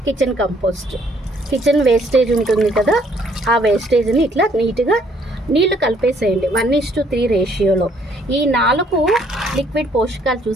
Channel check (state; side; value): normal; both; correlation 0.65